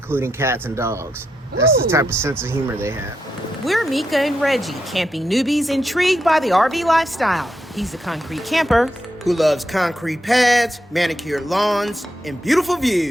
cats and dogs. That's the type of sense of humor they have. We're Mekka and Reggie, camping newbies intrigued by the RV lifestyle. He's a concrete camper Who loves concrete pads, manicured lawns, and beautiful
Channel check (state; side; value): normal; both; correlation 0.83